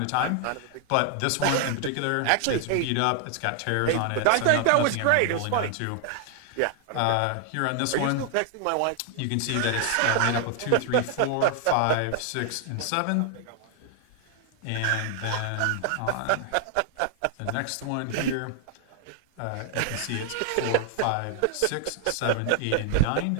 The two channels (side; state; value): both; different; correlation 0.00